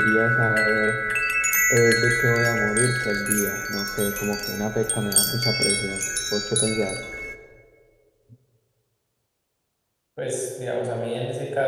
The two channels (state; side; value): identical; both; correlation 1.00